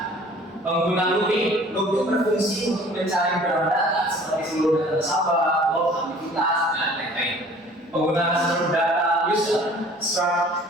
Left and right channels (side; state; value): both; normal; correlation 0.50